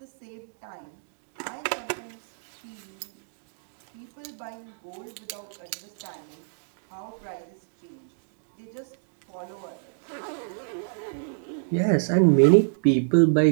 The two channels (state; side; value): silent; left; digital silence